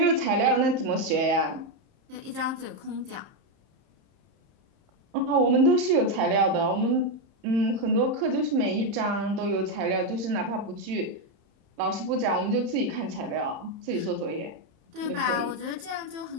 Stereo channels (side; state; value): left; late; 31 ms